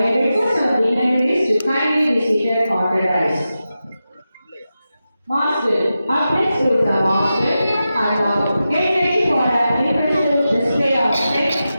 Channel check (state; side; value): inverted; both; correlation -0.91